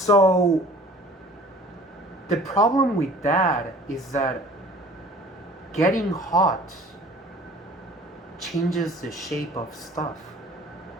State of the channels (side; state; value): both; normal; correlation 0.49